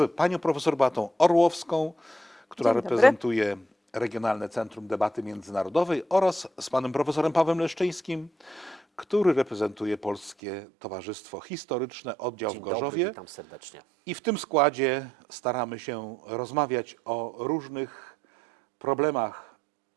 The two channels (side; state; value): left; drops out; at 10.4 s